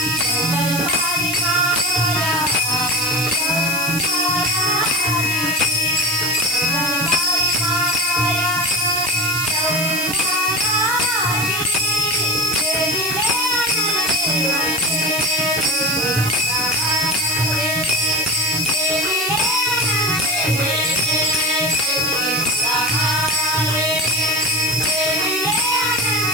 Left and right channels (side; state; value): right; noise; hiss, 4 dB below the sound